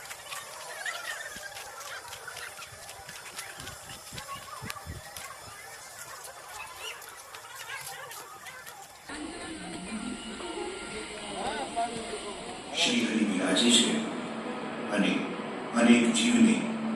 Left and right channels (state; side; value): identical; both; correlation 1.00